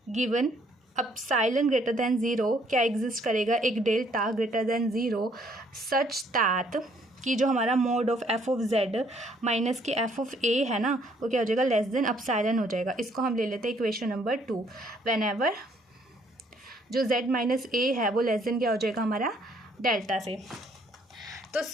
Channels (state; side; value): normal; both; correlation 0.65